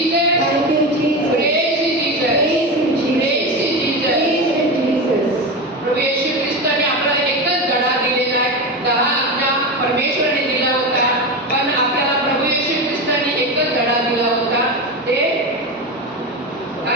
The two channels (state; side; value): normal; both; correlation 0.20